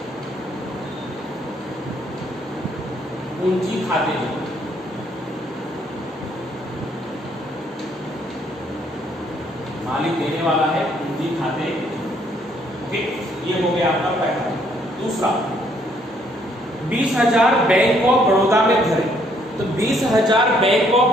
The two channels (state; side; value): normal; both; correlation 0.67